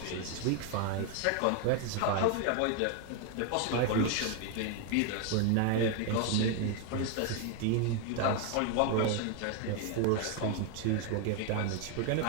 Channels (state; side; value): different; both; correlation 0.01